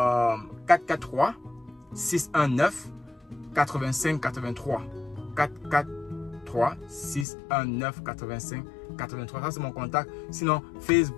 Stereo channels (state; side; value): drops out; right; at 7.2 s